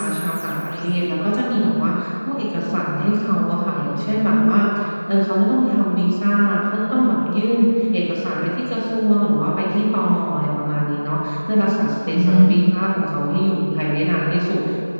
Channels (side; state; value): both; inverted; correlation -1.00